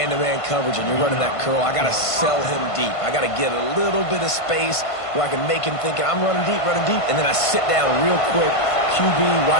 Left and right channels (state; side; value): late; right; 1.5 ms